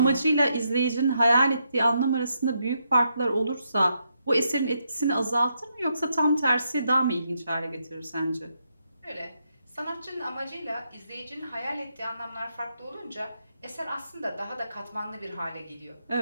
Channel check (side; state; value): both; inverted; correlation -0.80